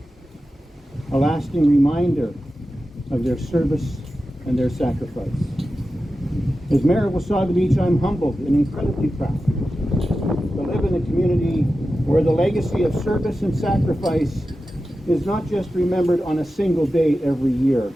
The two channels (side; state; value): both; normal; correlation 0.93